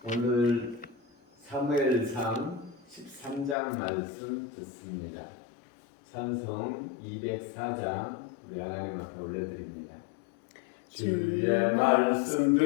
오늘 사무엘상 13장 말씀 듣습니다. 찬송 204장 우리 하나님 앞에 올려드립니다. 주의 말씀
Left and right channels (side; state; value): right; drops out; at 3.6 s